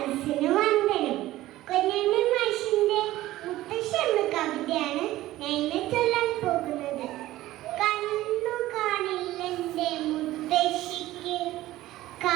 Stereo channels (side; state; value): left; quieter; 15.9 dB